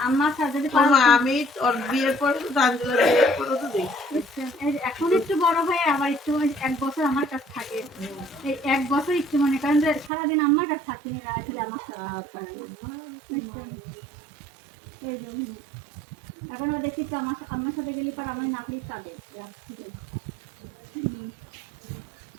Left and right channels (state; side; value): drops out; left; at 10.1 s